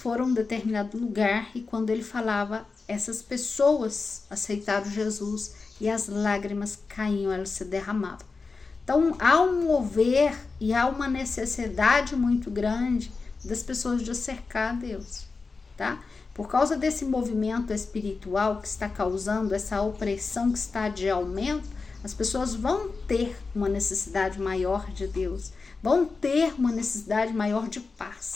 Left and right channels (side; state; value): right; quieter; 4.3 dB